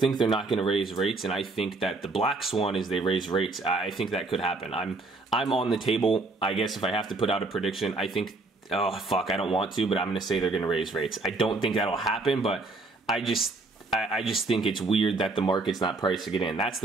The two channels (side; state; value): left; quieter; 3.3 dB